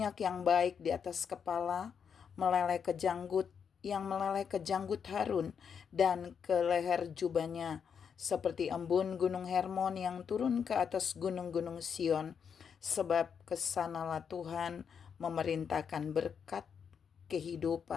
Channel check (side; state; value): right; quieter; 7.0 dB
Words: yang baik di atas kepala, meleleh ke janggut, yang meleleh ke janggut Harun dan ke leher jubahnya, seperti embun gunung Hermon yang turun ke atas gunung-gunung Sion, sebab kesanalah Tuhan memerintahkan berkat